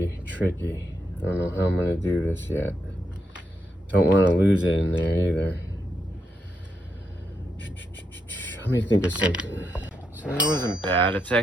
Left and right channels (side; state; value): both; normal; correlation 0.81